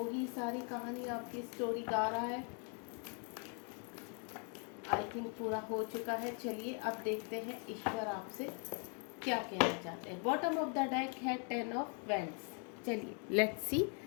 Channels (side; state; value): right; quieter; 39.5 dB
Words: ही सारी कहानी आपकी स्टोरी गा रहा है, आई थिंक पूरा हो चुका है। चलिए अब देखते हैं ईश्वर आपसे क्या कहना चाहते हैं। बॉटम ऑफ द डेक है 10 ऑफ वेंड्स। चलिए लेट्स सी,